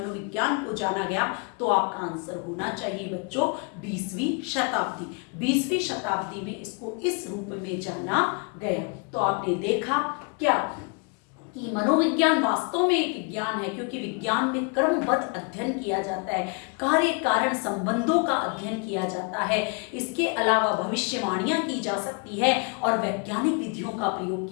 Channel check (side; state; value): right; quieter; 35.5 dB